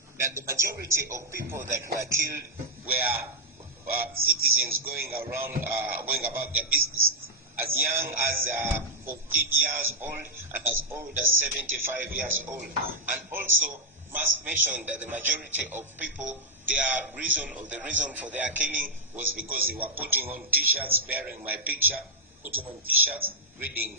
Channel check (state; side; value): normal; both; correlation -0.03